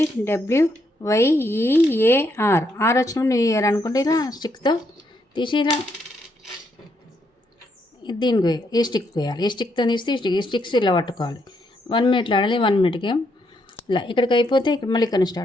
వచ్చినప్పుడు న్యూ ఇయర్ అనుకుంటే ఇలా స్టిక్తో తీసి ఇలా దీనికి ఈ స్టిక్ వేయాలి. ఈ స్టిక్తో తీసి ఈ స్టిక్స్ ఇలా పట్టుకోవాలి. 1 మినిట్లో ఆడాలి. 1 మినిట్ గేమ్. ఇలా ఇక్కడికి అయిపోతే ఇక్కడ మళ్ళీ ఇక్కడ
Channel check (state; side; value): normal; both; correlation 0.76